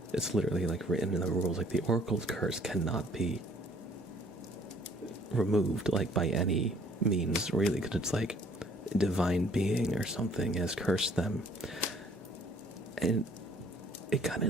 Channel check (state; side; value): normal; both; correlation 0.59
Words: it's literally like written in the rules, like the Oracle's curse cannot be removed like by any means, really, because it's like a divine being or something has cursed them. And it kind of